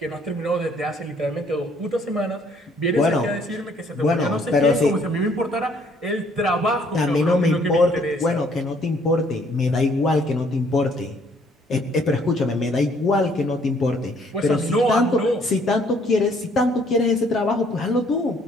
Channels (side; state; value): both; normal; correlation 0.63